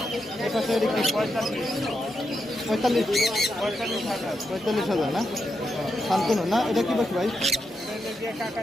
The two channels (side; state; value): both; normal; correlation 0.84